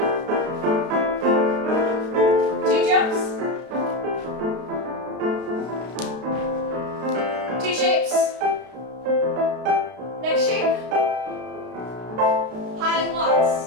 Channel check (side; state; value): left; late; 32 ms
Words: 2 jumps. 2 shapes. Next shape. High walks.